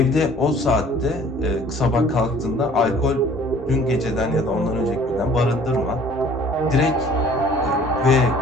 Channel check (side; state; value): both; normal; correlation 0.53